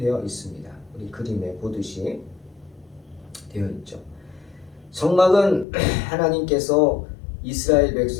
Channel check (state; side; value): drops out; right; at 5.7 s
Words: 있습니다. 우리 그림에 보듯이 되어 있죠. 성막은 하나님께서 이스라엘